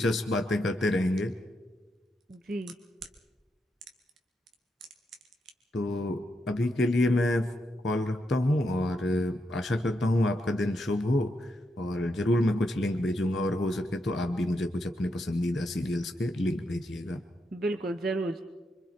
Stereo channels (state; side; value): normal; both; correlation 0.82